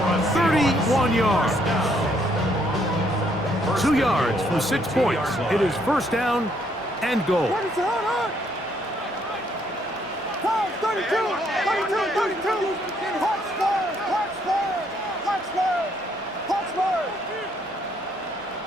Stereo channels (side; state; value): both; normal; correlation 0.69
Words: 31 yards. 2 yards from 6 points. It is first down and goal. 32!